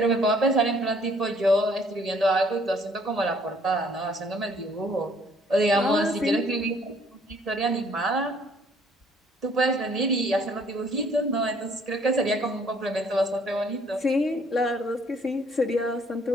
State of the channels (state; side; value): normal; both; correlation 0.61